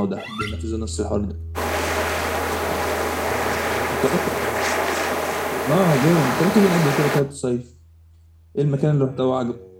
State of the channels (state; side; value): identical; both; correlation 1.00